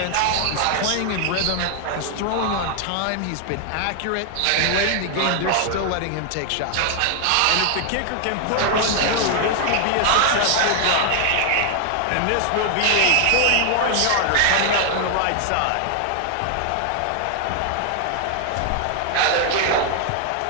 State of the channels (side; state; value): both; different; correlation 0.00